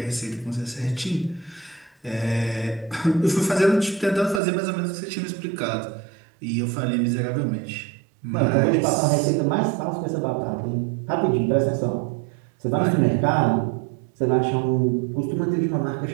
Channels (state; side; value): drops out; left; at 4.4 s